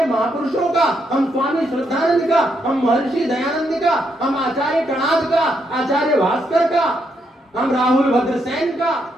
महापुरुषों का, हम स्वामी श्रद्धानंद का, हम महर्षि दयानंद का, हम आचार्य कणाद का, आचार्य भास्कर का, हम राहुल भद्रसेन का,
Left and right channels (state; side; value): normal; both; correlation 0.78